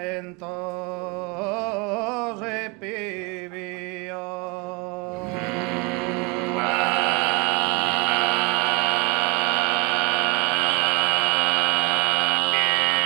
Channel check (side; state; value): left; quieter; 29.3 dB